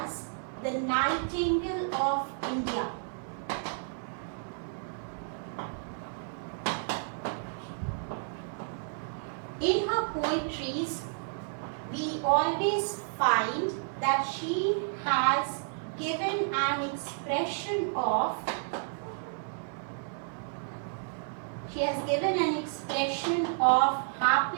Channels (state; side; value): silent; left; digital silence